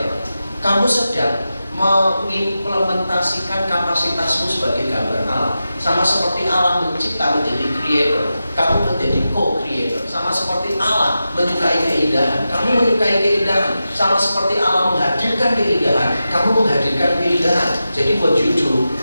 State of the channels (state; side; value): inverted; both; correlation -0.91